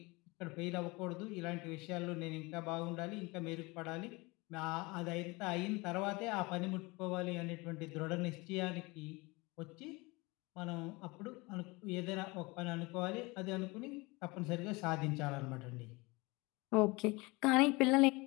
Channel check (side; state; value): right; quieter; 24.7 dB